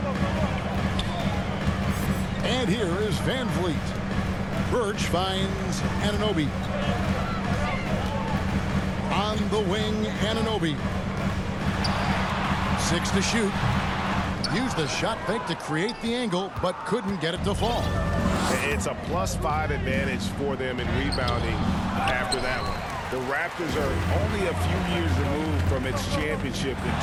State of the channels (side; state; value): both; identical; correlation 1.00